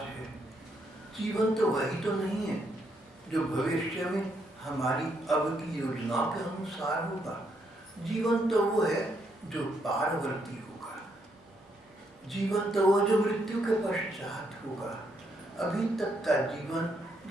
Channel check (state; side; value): normal; both; correlation 0.75